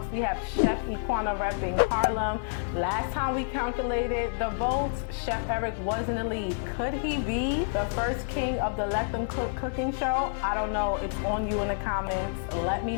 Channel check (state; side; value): silent; right; 58 dB below the other